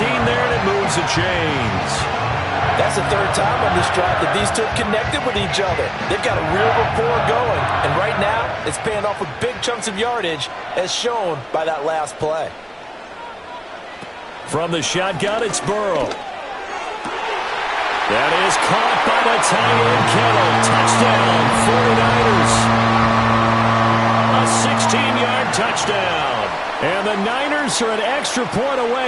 there, and it moves the chains. That's the third time on this drive that these two have connected with each other. They've got a real rapport going. And right now, it's paying off with big chunks of yardage, as shown by that last play. From the shotgun, it's Burrow. That is caught by the tight end, Kittle. Touchdown, 49ers. A 16-yard touchdown. And the Niners are an extra point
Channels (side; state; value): both; identical; correlation 1.00